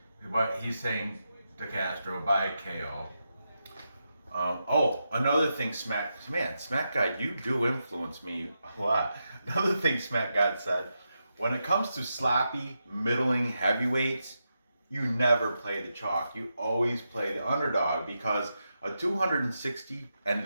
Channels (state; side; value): inverted; both; correlation -0.87